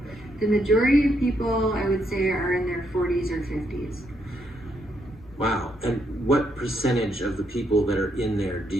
the majority of people, I would say, are in their 40s or 50s. Wow. And what percentage of the people that are in there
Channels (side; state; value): right; noise; rumble, 24 dB below the sound